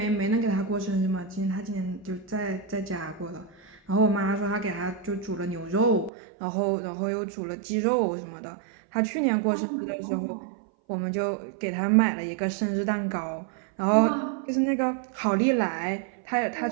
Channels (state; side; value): drops out; left; at 6.1 s